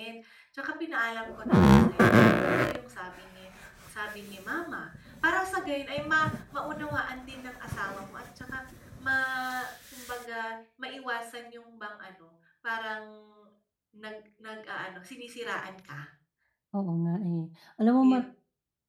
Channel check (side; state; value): both; identical; correlation 1.00